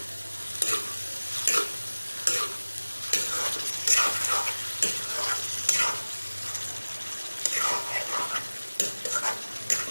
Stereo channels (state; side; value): inverted; both; correlation -1.00